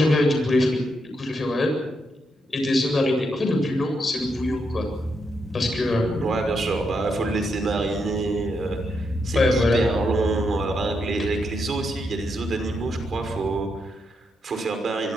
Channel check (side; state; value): both; normal; correlation 0.81